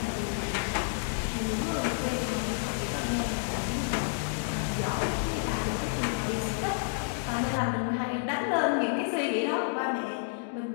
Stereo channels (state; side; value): silent; right; digital silence